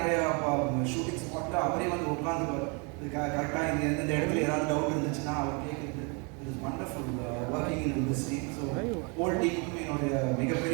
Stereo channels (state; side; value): quieter; left; 33.3 dB